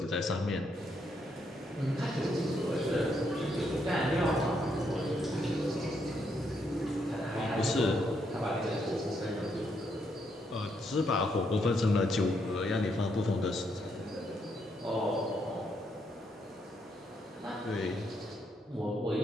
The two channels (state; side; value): normal; both; correlation 0.76